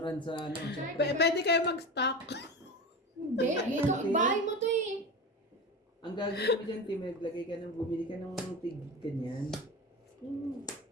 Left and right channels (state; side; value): normal; both; correlation 0.26